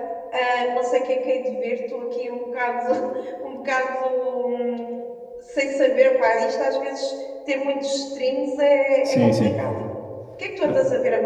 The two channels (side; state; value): both; identical; correlation 1.00